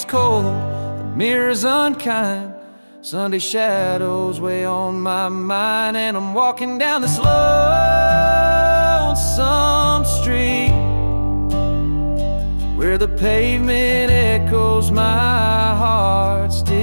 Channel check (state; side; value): inverted; both; correlation -1.00